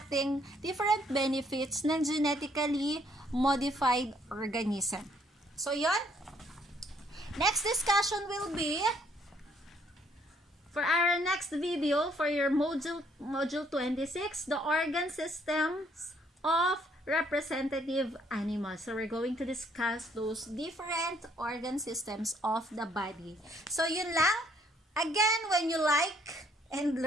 different benefits ng genetically modified organism. So, yon. Next discussion will be for our next video, for your module 26, the organ systems of representative animals. So, we're going to discuss those different organ systems of the body. So, yun lang. Again, when you like and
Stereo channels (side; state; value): both; normal; correlation 0.66